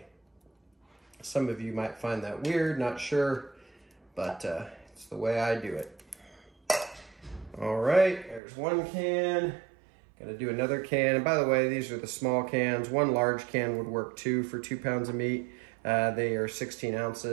Some of you might find that weird, not sure, but it's the way I do it. All right, there's one can. Gonna do another can. And by the way, these are the small cans. One large can would work too for 2 pounds of meat. They are 16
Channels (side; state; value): left; drops out; at 8.4 s